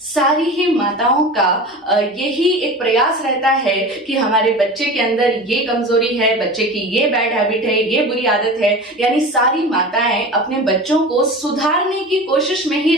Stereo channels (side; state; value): both; normal; correlation 0.33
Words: ही माताओं का यही एक प्रयास रहता है कि हमारे बच्चे के अंदर ये कमजोरी है, बच्चे की ये बैड हैबिट है, ये बुरी आदत है। यानी सारी माताएं अपने बच्चों को सुधारने की कोशिश में ही